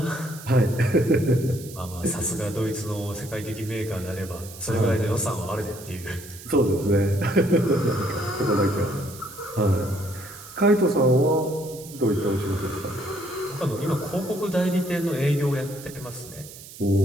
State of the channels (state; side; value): noise; right; hiss, 16 dB below the sound